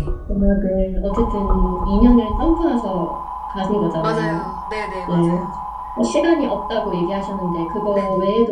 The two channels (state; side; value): identical; both; correlation 1.00